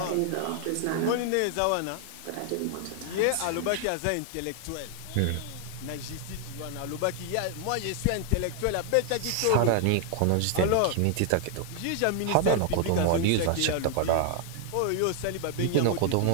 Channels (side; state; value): both; different; correlation 0.00